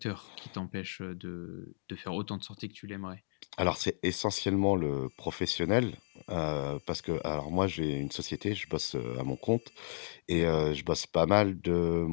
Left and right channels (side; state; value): right; silent; digital silence